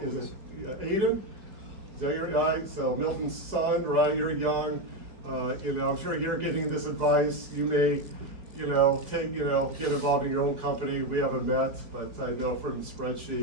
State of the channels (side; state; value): left; late; 4.5 ms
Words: Aiden? Is that your guy? So Milton's son, right? You're young. I'm sure you're getting this advice. You may, get involved in your own company. We haven't met, but I know from the